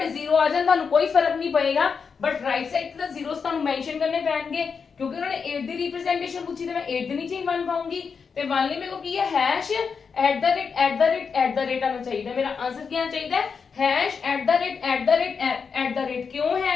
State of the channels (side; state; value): right; quieter; 5.8 dB